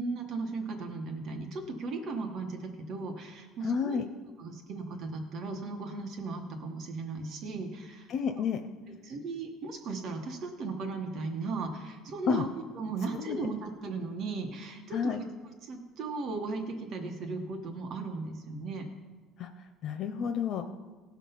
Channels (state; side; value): normal; both; correlation 0.56